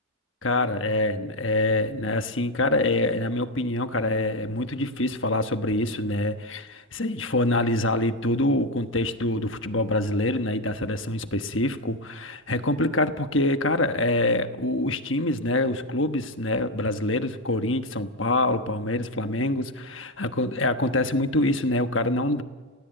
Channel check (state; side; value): normal; both; correlation 0.09